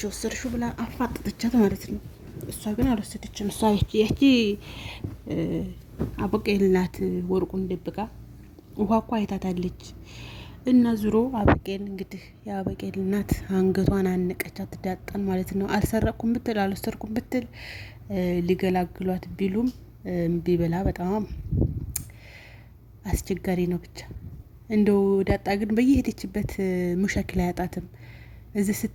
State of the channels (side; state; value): both; identical; correlation 1.00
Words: የወሰድሽው ብላ አፋጠጠቻት ማለት ነው። እሷ ግን አልወሰደችም። እሷ ያቺ አበቄ እናት ወርቁን ደብቃ ውሃ እኮ አይታታለች። እና ዙሮ አበቄን እንግዲህ የአበቄን እናት አንገቷን አነቀቻት ዳጣን ማለት ነው። አልሰረቅኩም ብትል አልወሰድኩም ብትል ሊገላግሏት ቢሉም እምቢ ብላ በጣም አስቸጋሪ ነው። ብቻ እንደው ዳጣ ግን በየሄደችበት ሙሸክል አያጣትም። እዚህ